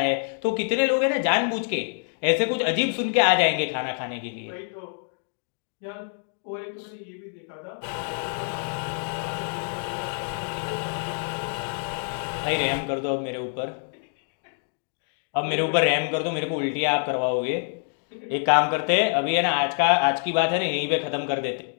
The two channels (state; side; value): silent; right; digital silence